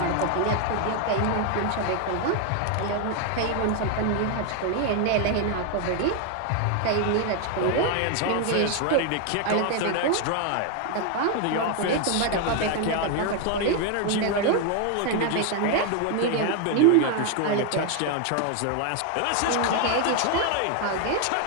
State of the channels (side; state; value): both; different; correlation 0.01